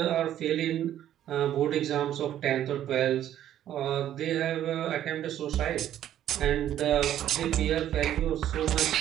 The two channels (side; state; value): left; quieter; 11.5 dB